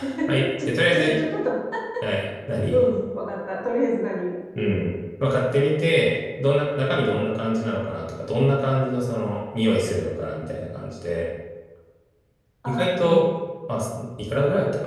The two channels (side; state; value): both; identical; correlation 1.00